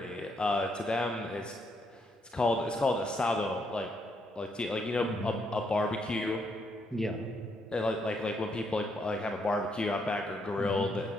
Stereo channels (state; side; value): normal; both; correlation 0.75